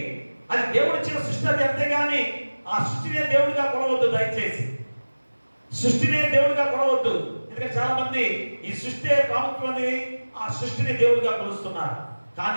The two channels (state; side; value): inverted; both; correlation -1.00